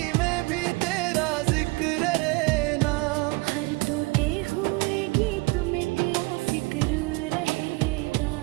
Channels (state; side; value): quieter; left; 24.9 dB